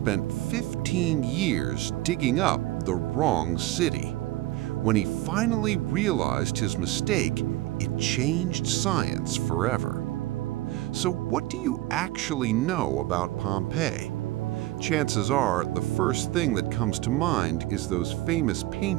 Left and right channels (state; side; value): quieter; left; 17.0 dB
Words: 15 years digging up the wrong city. When he finally realized his mistake, it changed science forever. So what do you actually know about Pompeii? Chances are the first thing that comes to mind is those famous